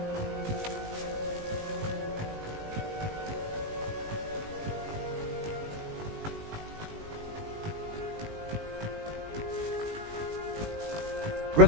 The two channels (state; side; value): late; left; 19 ms